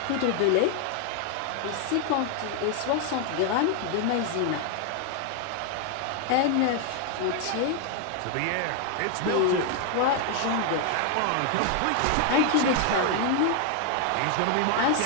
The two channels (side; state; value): both; different; correlation 0.00